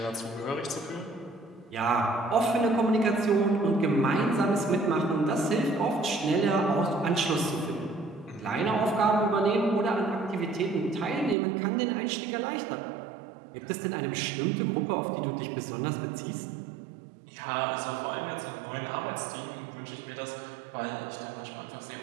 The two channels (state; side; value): drops out; left; at 11.4 s